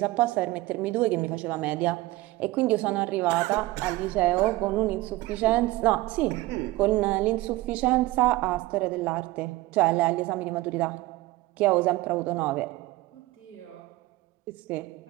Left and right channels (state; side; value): quieter; left; 18.7 dB